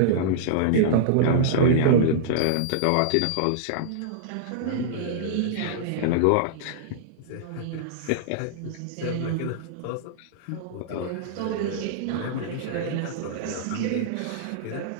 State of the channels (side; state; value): both; different; correlation -0.02